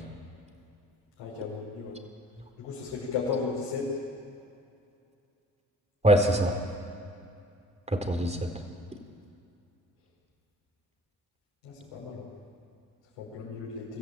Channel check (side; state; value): both; normal; correlation 0.50